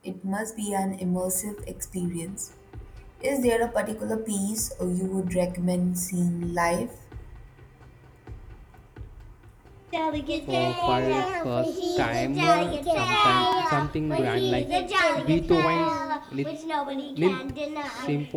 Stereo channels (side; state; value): both; identical; correlation 1.00